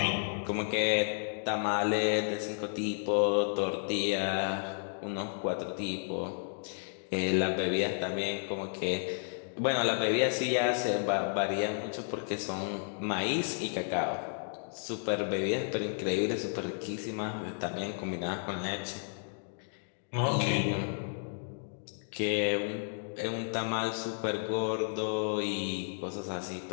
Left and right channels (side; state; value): right; silent; digital silence